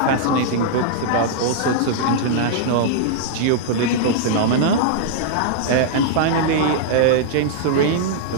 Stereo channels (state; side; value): different; both; correlation -0.01